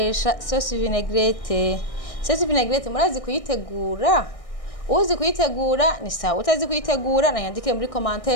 sauce vinaigrette. Sauce vinaigrette murazi kuyitegura? Uzi kuyitegura ni sawa, utazi kuyitegura nanyandikire muri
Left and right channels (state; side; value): late; right; 1.6 ms